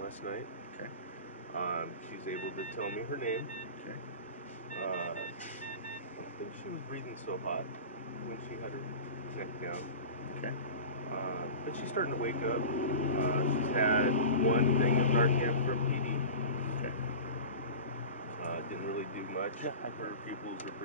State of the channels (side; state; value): both; inverted; correlation -0.33